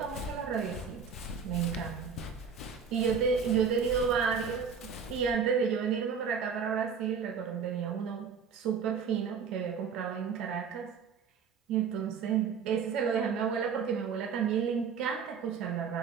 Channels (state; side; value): quieter; left; 6.4 dB